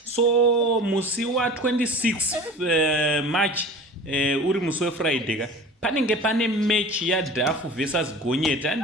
So musi wa26 March uri musi wefriday ka panenge pane mechi yadhafu versus gonyeti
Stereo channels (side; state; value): both; normal; correlation 0.39